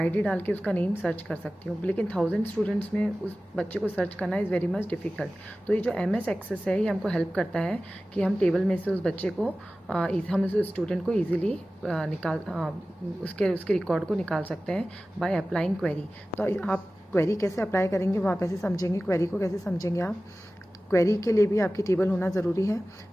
डाल के उसका नेम सर्च कर सकती हूँ. लेकिन 1000 स्टूडेंट्स में उस बच्चे को सर्च करना इज़ वेरी मच डिफ़िकल्ट. तो ये जो MS एक्सेस है ये हमको हेल्प करता है कि हम टेबल में से उस बच्चे को हम उस स्टूडेंट को ईजिली उसके रिकॉर्ड को निकाल सकते हैं बाय अप्लाइंग क्वेरी. तो आप क्वेरी कैसे अप्लाई करेंगे वो आप ऐसे समझेंगे. क्वेरी को कैसे समझेंगे आप? क्वेरी के लिए भी आपकी टेबल होना ज़रूरी है.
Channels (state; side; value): normal; both; correlation 0.96